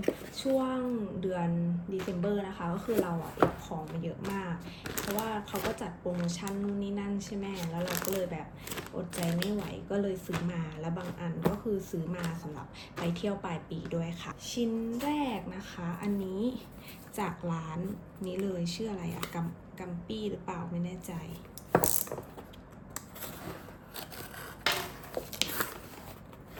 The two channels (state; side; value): identical; both; correlation 1.00